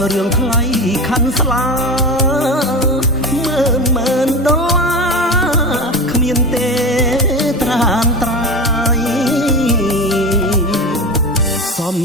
រឿងថ្លៃខាន់ស្លាម៉ឺនដុល្លារគ្មានទេត្រានត្រៃសំ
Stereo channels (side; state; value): both; normal; correlation 0.25